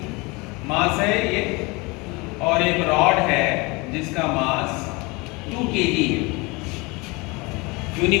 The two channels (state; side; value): quieter; right; 26.0 dB